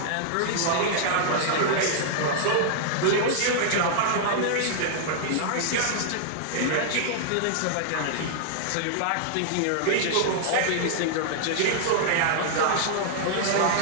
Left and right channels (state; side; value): different; both; correlation -0.01